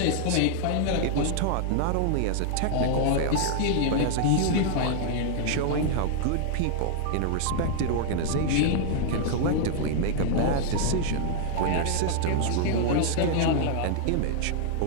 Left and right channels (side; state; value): both; different; correlation -0.01